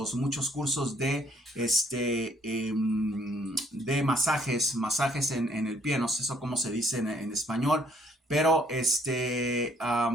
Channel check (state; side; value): normal; both; correlation 0.65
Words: de masajes en el pie, no sé eso cómo se dice en español, pero